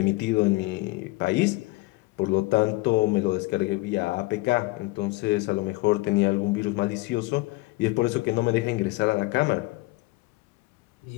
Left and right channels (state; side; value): quieter; right; 21.7 dB